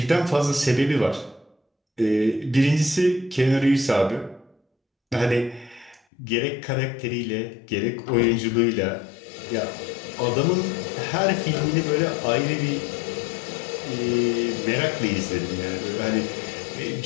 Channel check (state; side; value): drops out; right; at 6.0 s